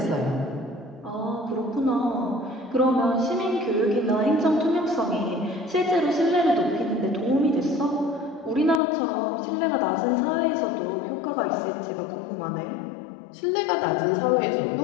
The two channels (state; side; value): drops out; right; at 8.8 s